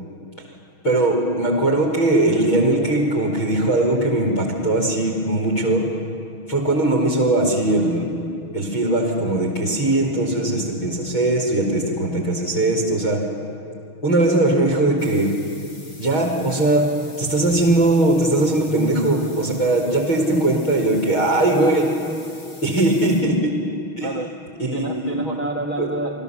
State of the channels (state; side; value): late; right; 6.3 ms